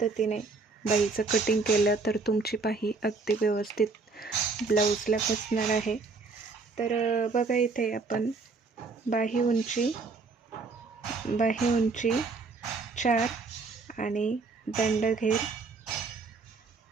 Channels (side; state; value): left; quieter; 4.1 dB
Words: बाहीचं कटिंग केलं तर तुमची बाही अगदी व्यवस्थित ब्लाऊजला बसणार आहे. तर बघा, इथे आपण बाही उंची 4 आणि दंडघेर